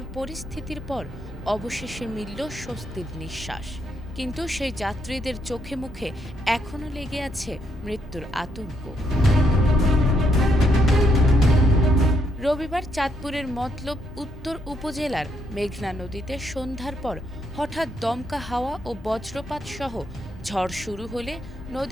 পরিস্থিতির পর অবশেষে মিলল স্বস্তির নিঃশ্বাস। কিন্তু সেই যাত্রীদের চোখে মুখে এখনও লেগে আছে মৃত্যুর আতঙ্ক। রবিবার চাঁদপুরের মতলব উত্তর উপজেলার মেঘনা নদীতে সন্ধ্যার পর হঠাৎ দমকা হাওয়া ও বজ্রপাত সহ ঝড় শুরু হলে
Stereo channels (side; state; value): both; normal; correlation 0.75